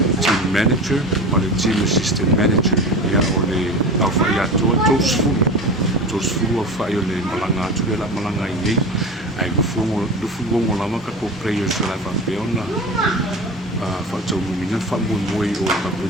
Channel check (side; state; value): both; normal; correlation 0.30